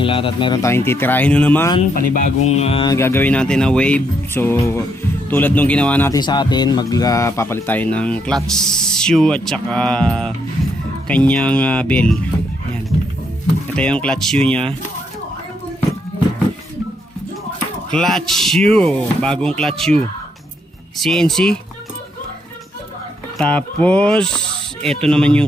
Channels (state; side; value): normal; both; correlation 0.76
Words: lahat at meron tayong titirahin na naman panibagong gagawin natin na wave. So tulad nung ginawa natin sa atin, magpapalit tayo ng clutch shoe at saka kanyang bell. Yan. Ito yung clutch shoe nya, clutch shoe, bagong clutch shoe CNC. Tapos ito naman yung